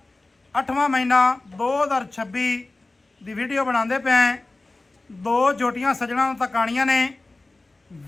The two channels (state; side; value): quieter; right; 3.1 dB